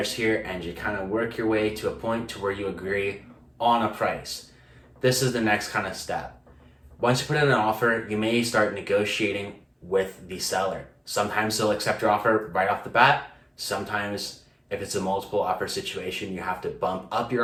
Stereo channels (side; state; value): both; identical; correlation 1.00